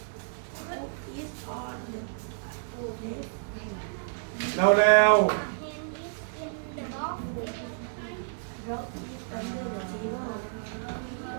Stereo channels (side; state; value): left; silent; digital silence